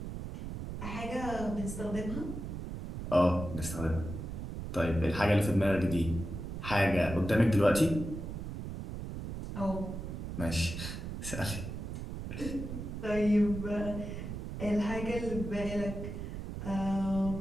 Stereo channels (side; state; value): right; noise; rumble, 7 dB below the sound